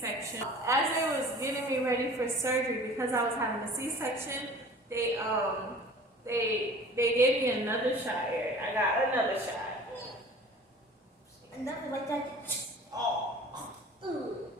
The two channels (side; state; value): both; normal; correlation 0.44